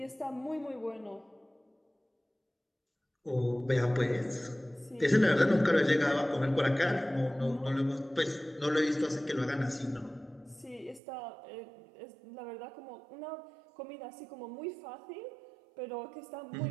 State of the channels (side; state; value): left; drops out; at 11.0 s